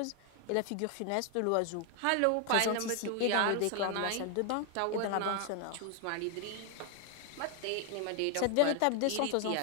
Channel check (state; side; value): different; both; correlation 0.00